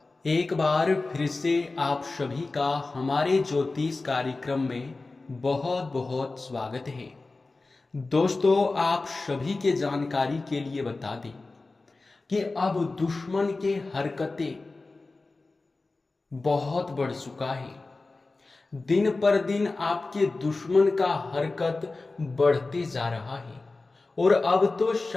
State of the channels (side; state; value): right; quieter; 3.5 dB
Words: एक बार फिर से आप सभी का हमारे ज्योतिष कार्यक्रम में बहुत बहुत स्वागत है। दोस्तों आप सभी के जानकारी के लिए बता दें कि अब दुश्मन के हरकतें बहुत बढ़ चुका है। दिन पर दिन आपके दुश्मन का हरकत बढ़ते जा रहा है और अब तो